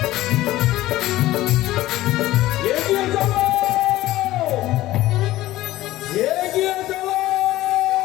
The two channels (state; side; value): quieter; right; 16.1 dB